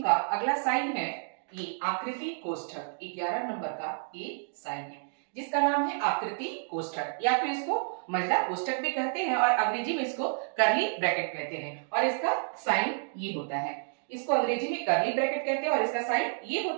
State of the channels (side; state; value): left; silent; digital silence